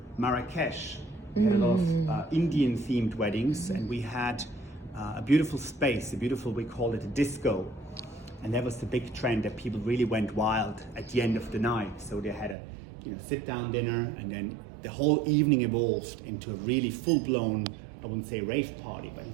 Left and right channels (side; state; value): left; drops out; at 12.6 s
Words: Marrakesh, we had a lot of Indian themed weddings, and we had a beautiful space, we called it a disco. And that was the big trend, that people really went wild at the end of the night. So they had a sit-down dinner, and then the whole evening evolved into a really full-blown, I wouldn't say rave party, but